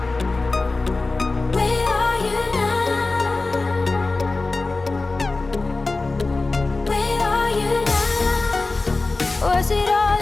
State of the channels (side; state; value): right; quieter; 3.4 dB